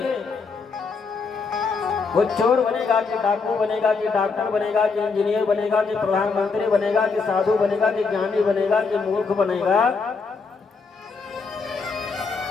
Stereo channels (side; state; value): right; quieter; 4.7 dB